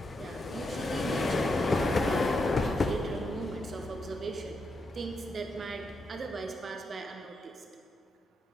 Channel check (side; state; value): both; normal; correlation 0.83